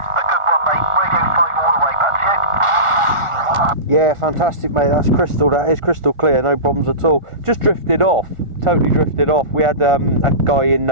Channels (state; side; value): late; left; 1.4 ms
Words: a good one, mate. Radio 5 all the way, back to you. Yeah, fantastic, mate. That's crystal. That is crystal clear. No problems at all. Just drifted off. Totally drifted off. We had a guy in